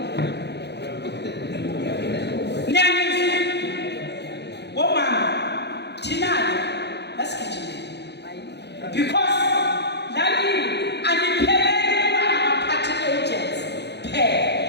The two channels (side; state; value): right; late; 0.49 ms